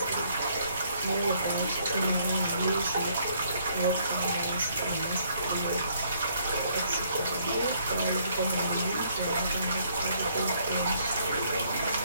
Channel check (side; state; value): both; inverted; correlation -0.67